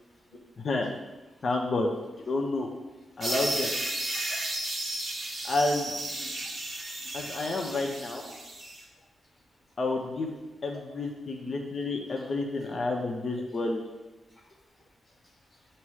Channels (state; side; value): normal; both; correlation 0.84